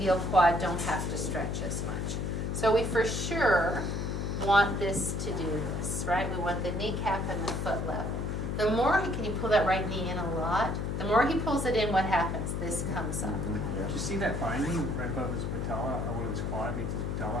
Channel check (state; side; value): noise; left; hum, 2 dB below the sound